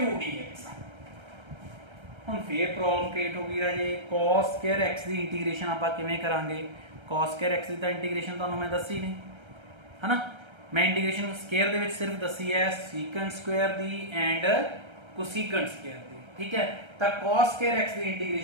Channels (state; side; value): late; left; 1.3 ms